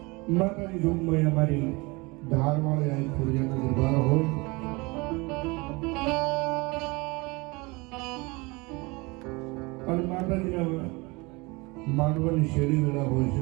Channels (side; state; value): left; quieter; 25.5 dB